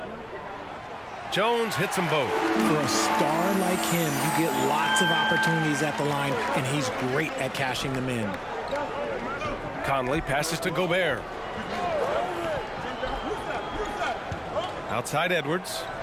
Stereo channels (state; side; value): identical; both; correlation 1.00